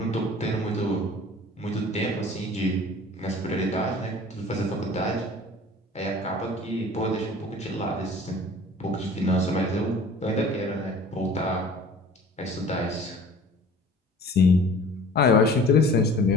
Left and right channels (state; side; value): normal; both; correlation 0.46